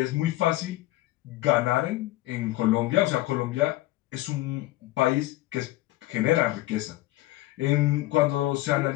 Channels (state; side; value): quieter; right; 17.5 dB